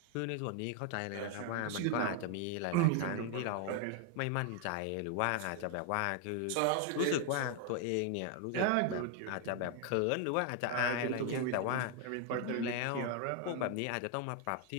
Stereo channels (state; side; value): different; both; correlation 0.00